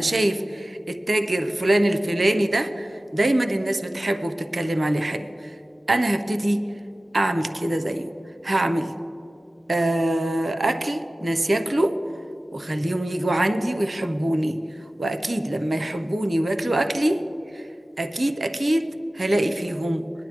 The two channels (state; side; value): normal; both; correlation 0.96